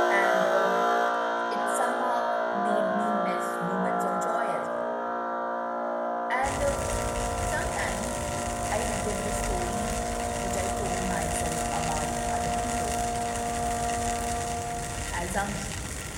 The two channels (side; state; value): both; identical; correlation 1.00